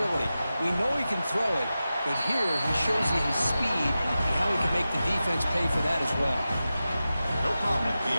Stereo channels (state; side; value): inverted; both; correlation -0.93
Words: We know he can throw it, but here he shows you his speed and how he can make the defense pay for that as well. No problem with